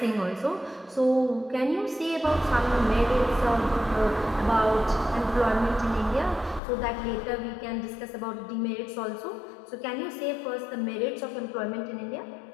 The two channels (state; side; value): drops out; right; at 6.6 s